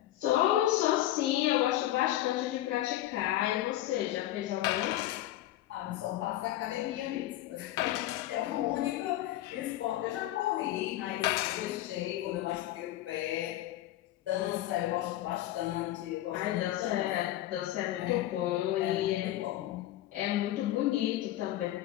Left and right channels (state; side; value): quieter; right; 14.2 dB